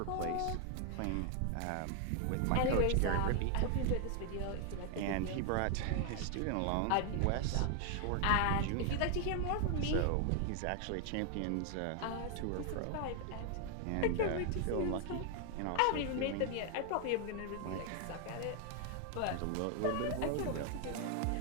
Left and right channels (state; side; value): different; both; correlation 0.00